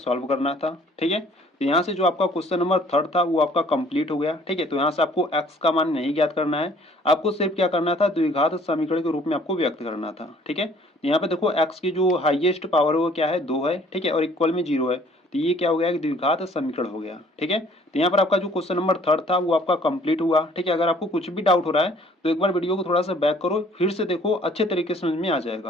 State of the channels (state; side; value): normal; both; correlation 0.57